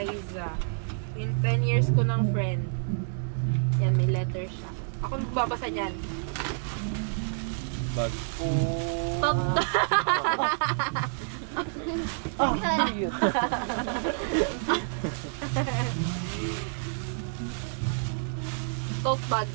In 10 years ko ng friend. Yan, may letter siya. Ako magbabasa niyan. Bag. Oh. Top. Oh, cute. Tote bag.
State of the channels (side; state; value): left; silent; 59 dB below the other